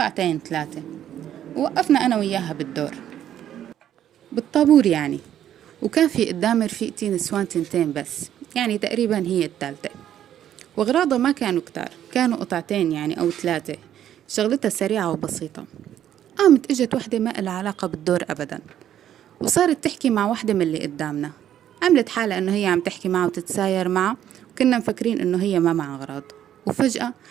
3. ووقفنا أنا وياها بالدور بالطابور يعني، وكان في قدام رفيقتي نسوان 2 بس، يعني تقريبا هي الثالثة. وأغراضها ما كانوا كتار، كانوا قطعتين يعني أو 3. شغلتها سريعة وبسيطة. قامت اجت وحدة ما لها علاقة بالدور أبدا، وصارت تحكي مع وحدة من اللي قدامنا. عملت حالة إنه هي عم تحكي معه وتتساير معه، وكنا مفكرين إنه هي ما معها أغراض. وفجأة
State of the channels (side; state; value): left; quieter; 10.8 dB